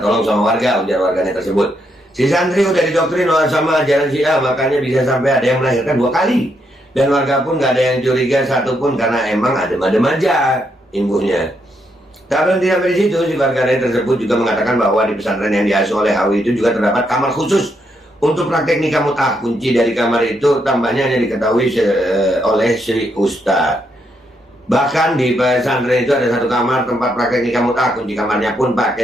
tolong sama warga, ujar warganet tersebut. Si santri udah didoktrin sama ajaran Syiah, makanya bisa sampai ada yang melahirkan 2 kali. Dan warga pun gak ada yang curiga satupun karena emang adem-adem aja imbuhnya. Tak berhenti sampai di situ, si warganet tersebut juga mengatakan bahwa di pesantren yang diasuh oleh HW itu juga terdapat kamar khusus untuk praktek nikah mut'ah. Kunci dari kamar itu tambahnya hanya diketahui oleh si Ustadz. Bahkan di pesantren itu ada 1 kamar tempat praktek nikah mut'ah. Kunci kamarnya pun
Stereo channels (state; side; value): normal; both; correlation 0.78